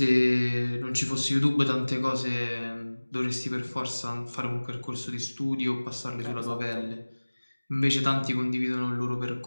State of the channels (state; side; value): inverted; both; correlation -1.00